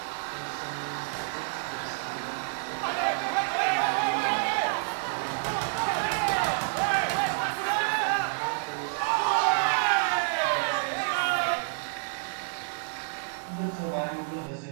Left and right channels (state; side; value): silent; left; 59 dB below the other